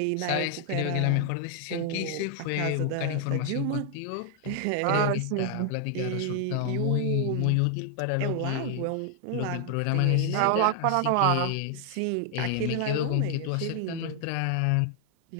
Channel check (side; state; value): both; different; correlation 0.00